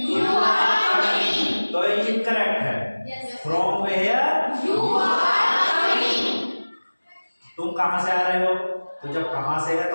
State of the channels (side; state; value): both; inverted; correlation -1.00